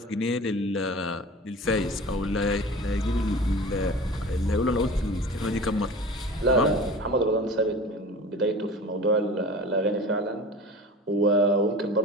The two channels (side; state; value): both; normal; correlation 0.37